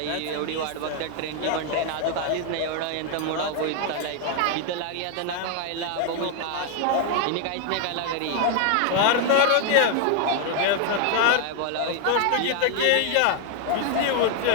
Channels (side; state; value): both; different; correlation 0.00